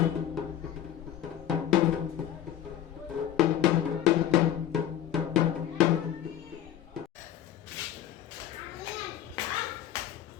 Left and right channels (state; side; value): quieter; right; 11.0 dB